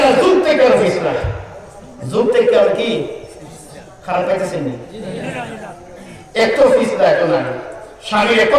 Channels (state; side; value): identical; both; correlation 1.00